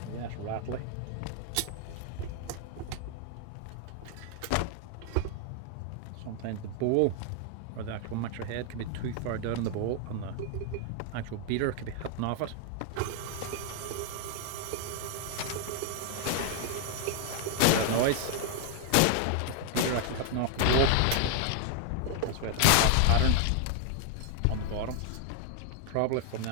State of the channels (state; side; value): different; both; correlation 0.00